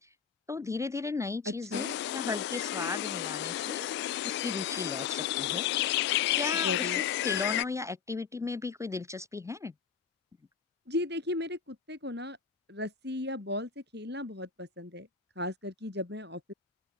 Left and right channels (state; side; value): quieter; right; 6.5 dB